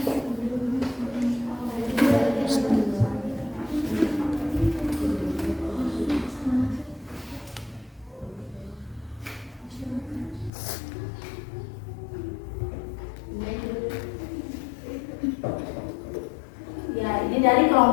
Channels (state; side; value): drops out; right; at 10.5 s